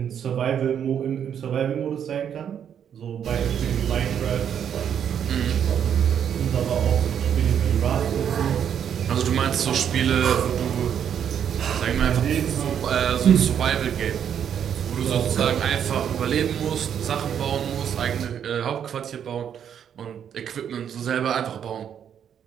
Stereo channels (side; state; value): left; quieter; 8.7 dB